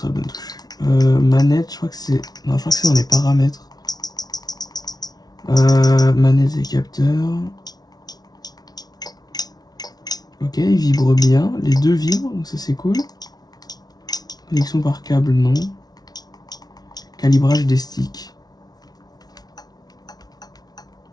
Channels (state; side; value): late; right; 0.19 ms